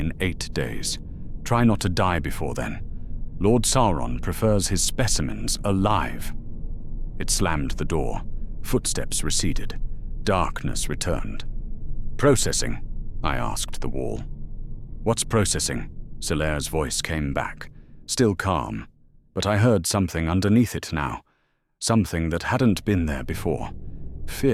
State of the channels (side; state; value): both; identical; correlation 1.00